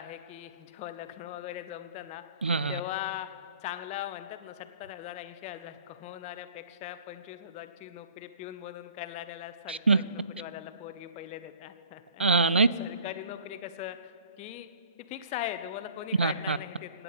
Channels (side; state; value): both; inverted; correlation -0.50